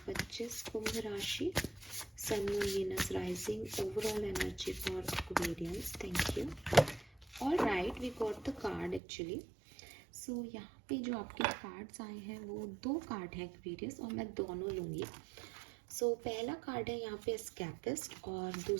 कुंभ राशि, sun moon Venus rising, overall energy for Aquarians. Thank you. All right, we got the card actually. So यहाँ पे जो आपके कार्ड्स आए हैं वो दो कार्ड हैं एक्वेरियस, और मैं दोनों लूँगी। सो पहला कार्ड है यहाँ पे एस्केपिस्ट और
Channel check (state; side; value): drops out; left; at 9.0 s